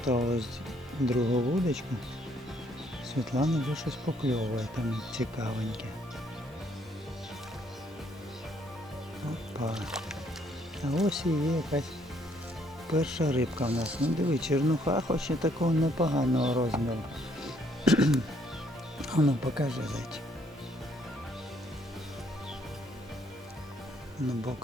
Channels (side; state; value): both; normal; correlation 0.68